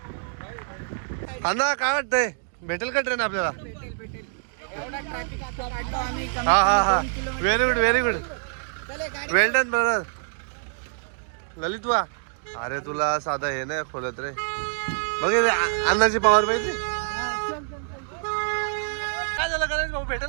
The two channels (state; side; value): silent; left; digital silence